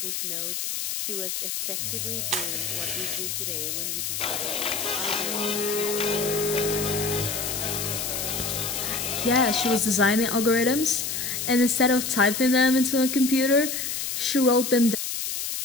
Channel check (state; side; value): noise; left; hiss, 3 dB below the sound